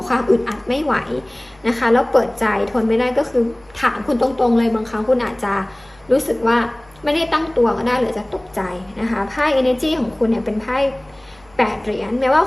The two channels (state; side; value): noise; right; hum, 29 dB below the sound